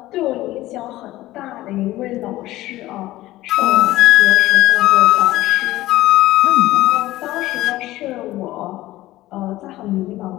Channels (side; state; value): right; quieter; 16.5 dB